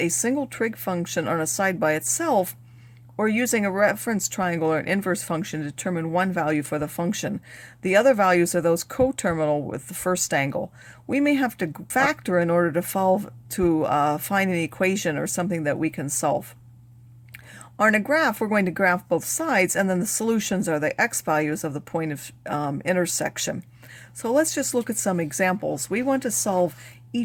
single trig function on a side by itself, or using a reference triangle or an inverse function to determine one value for the function. The other values are those coterminal with the first angle. We may have to factor in order to find an equation or something that we can solve. On a graph, we're going to graph both sides, and then the solutions are the x values of the point of intersection. So let's just look at some examples. We want to solve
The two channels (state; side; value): identical; both; correlation 1.00